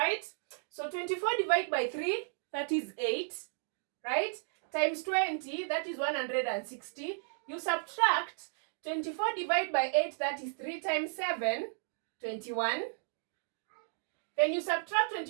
So 24 divided by 3, that is 8, right? Times 20, that is 160. You subtract 24 divided by 8, that is 3 times 7, 21. Then you subtract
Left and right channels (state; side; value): silent; left; digital silence